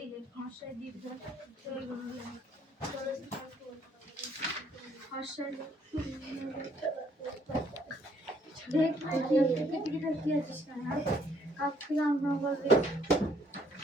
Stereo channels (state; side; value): normal; both; correlation 0.66